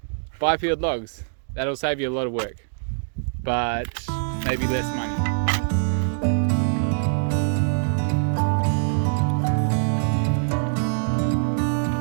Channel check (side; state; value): left; silent; digital silence